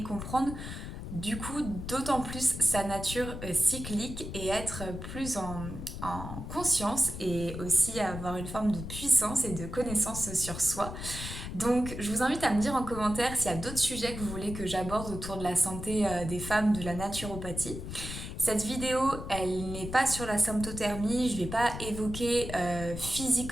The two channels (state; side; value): noise; left; rumble, 8 dB below the sound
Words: comprendre du coup, d'autant plus sa nature cyclique et être plus en conscience et aussi avoir une forme de puissance et de connaissance sur soi. Donc, je vous invite à me dire en commentaire s'il y a d'autres sujets que vous voulez que j'aborde autour de la santé des femmes, de la naturopathie. Cette vidéo, elle n'est pas sur la symptothermie, je ne vais pas évoquer